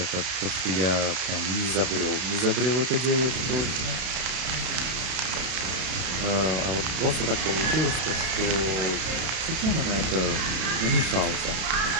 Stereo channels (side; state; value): left; late; 32 ms